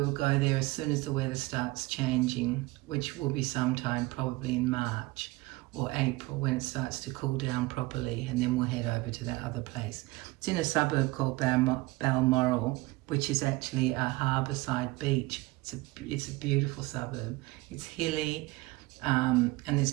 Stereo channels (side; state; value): left; quieter; 21.5 dB